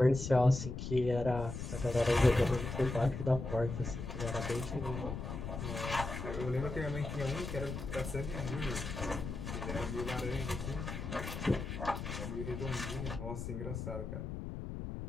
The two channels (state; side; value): noise; left; rumble, 6 dB below the sound